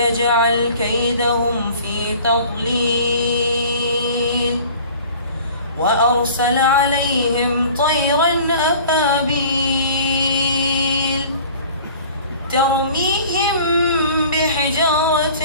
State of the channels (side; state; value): both; inverted; correlation -0.46